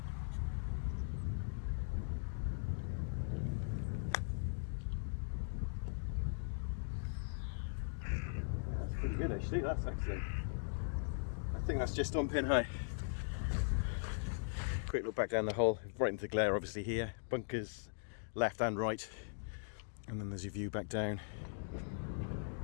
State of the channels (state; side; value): silent; right; digital silence